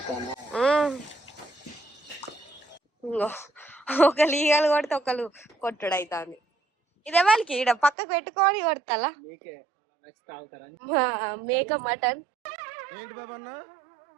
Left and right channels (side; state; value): left; drops out; at 8.0 s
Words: ఒకళ్ళు ఈగలు కొడితే ఒకళ్ళు కొట్టుడు అవుతుంది. ఇదే వాళ్ళకి ఈడ పక్కకు పెట్టుకొని కొడతా మేక మటన్